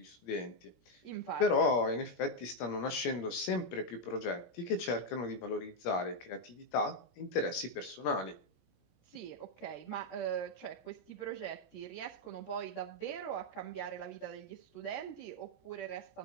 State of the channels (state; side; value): late; right; 17 ms